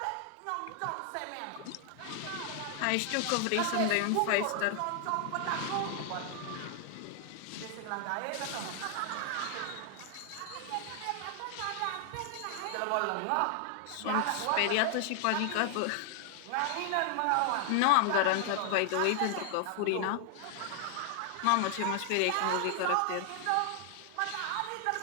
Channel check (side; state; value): both; different; correlation 0.00